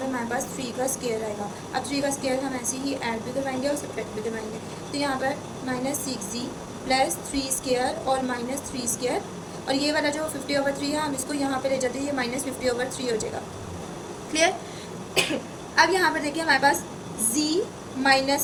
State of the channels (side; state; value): both; identical; correlation 1.00